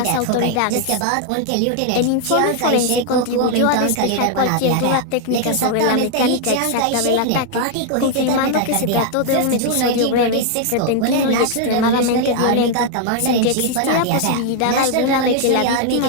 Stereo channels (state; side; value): different; both; correlation 0.00